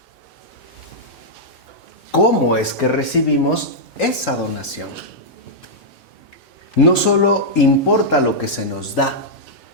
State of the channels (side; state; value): both; normal; correlation -0.08